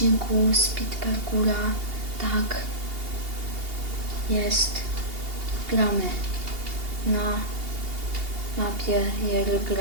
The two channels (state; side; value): late; left; 2.8 ms